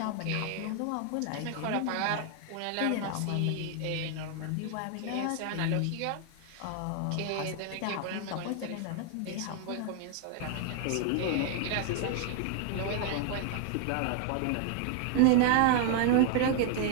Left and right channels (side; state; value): both; different; correlation 0.00